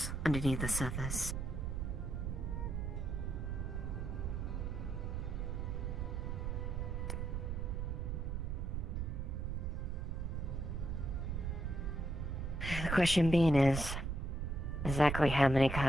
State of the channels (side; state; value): right; noise; rumble, 2 dB below the sound